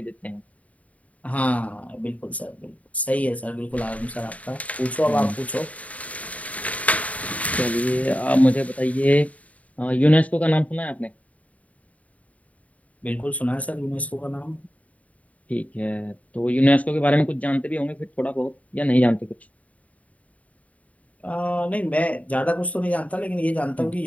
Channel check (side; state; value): right; late; 0.069 ms